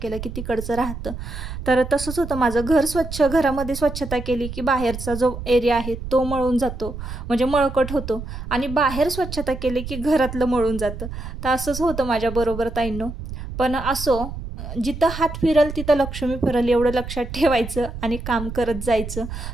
की तिकडचं राहतं. तर तसंच होतं माझं. घरामध्ये स्वच्छता केली की बाहेरचा जो एरिया आहे तो मळून जातो, म्हणजे मळकट होतो. आणि बाहेर स्वच्छता केली की घरातलं मळून जातं. तर असंच होतं माझ्याबरोबर ताईंनो. पण असो, जिथं हात फिरल तिथं लक्ष्मी फिरल, एवढं लक्षात ठेवायचं आणि काम करत जायचं.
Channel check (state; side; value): noise; right; rumble, 9 dB below the sound